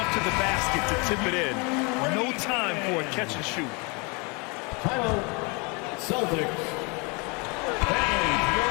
to the basket to tip it in. No time for a catch and shoot. Timeout, Celtics. And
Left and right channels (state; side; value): quieter; right; 30.5 dB